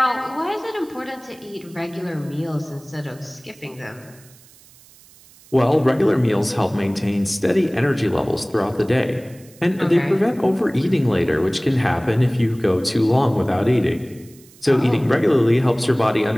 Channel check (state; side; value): noise; right; hiss, 25 dB below the sound